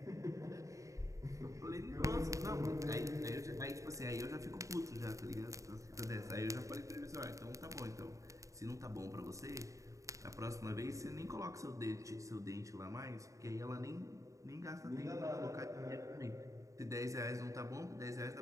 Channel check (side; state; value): left; late; 0.16 ms